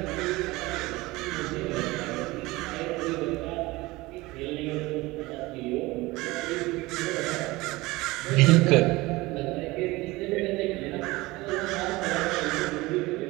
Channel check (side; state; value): left; quieter; 20.9 dB